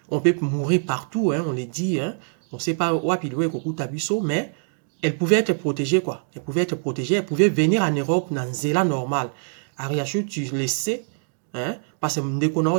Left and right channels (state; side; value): silent; left; 63 dB below the other